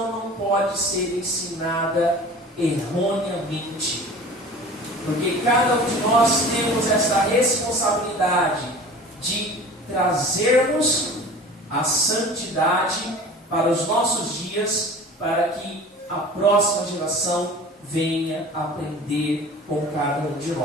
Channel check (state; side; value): normal; both; correlation 0.41